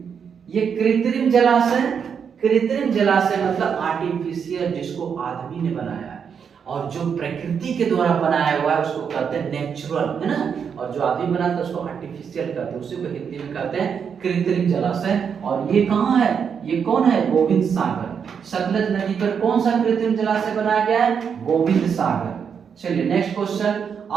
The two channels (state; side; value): quieter; left; 7.0 dB